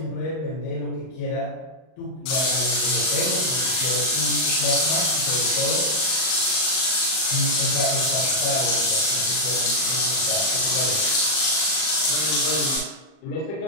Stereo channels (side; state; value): right; late; 38 ms